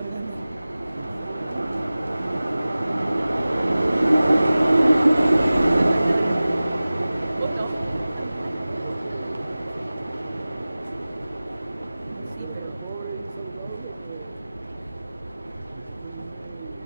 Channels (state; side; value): inverted; both; correlation -0.97